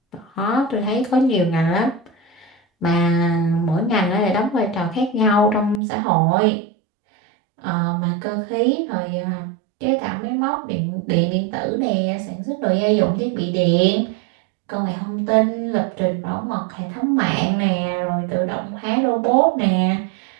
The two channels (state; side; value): drops out; left; at 5.8 s